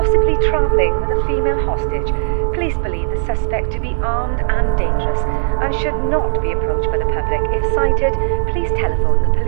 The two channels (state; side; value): silent; left; digital silence